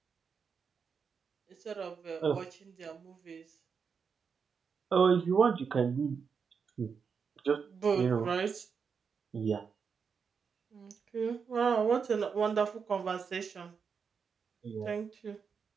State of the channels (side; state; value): left; quieter; 6.0 dB